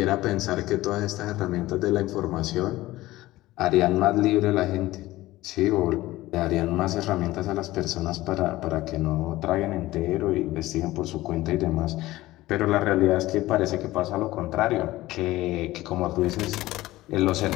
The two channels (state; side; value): quieter; right; 17.3 dB